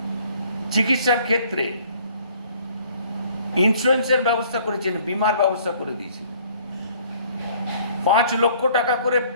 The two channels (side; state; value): both; inverted; correlation -0.57